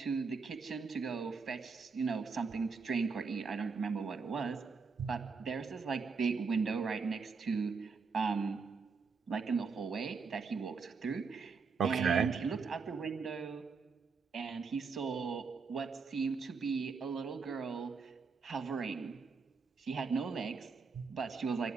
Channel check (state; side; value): quieter; left; 5.0 dB